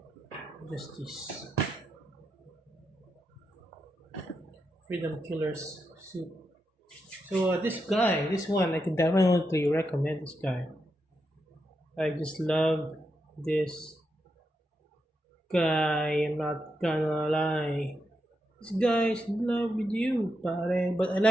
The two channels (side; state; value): both; normal; correlation 0.85